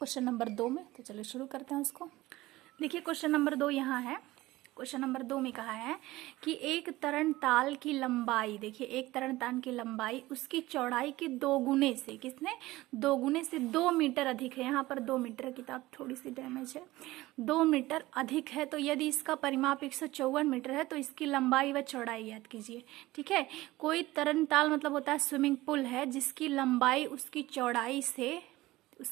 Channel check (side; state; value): left; quieter; 18.2 dB